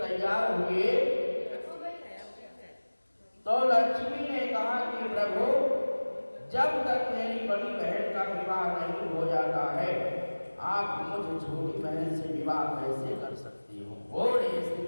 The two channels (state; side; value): inverted; both; correlation -1.00